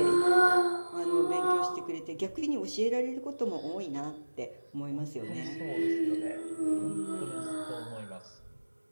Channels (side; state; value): both; inverted; correlation -1.00